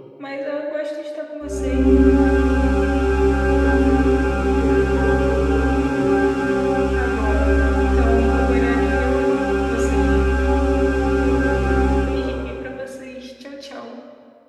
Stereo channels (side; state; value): both; identical; correlation 1.00